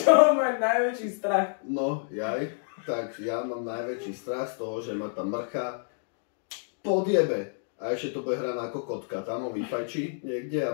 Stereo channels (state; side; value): silent; right; digital silence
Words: čoho máš najväčší strach? No, tak ja mám najväčší strach z toho, že ma tá mrcha podjebe. A ešte to bude hrať ako kotka, tam ho vyfajčí niekde